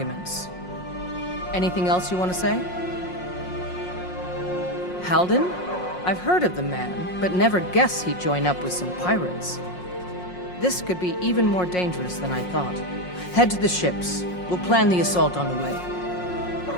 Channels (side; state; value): right; late; 5.5 ms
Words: Anything else you want to say? Halden? I've heard of the man, but never guessed he'd join up with some pirates. This could be even more dangerous than I thought. Head to the ships. We'll plan the assault on the way.